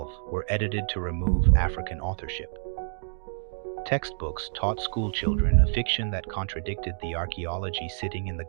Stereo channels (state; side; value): silent; left; digital silence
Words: were edited to remove African authorship. Textbooks taught schoolchildren a fiction that contradicted the archaeology sitting in the